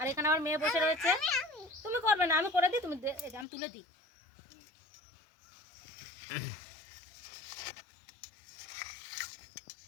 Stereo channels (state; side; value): drops out; right; at 3.5 s